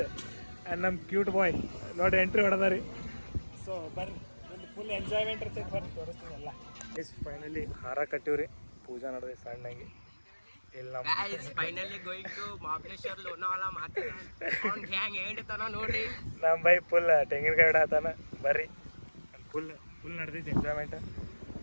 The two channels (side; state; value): both; inverted; correlation -1.00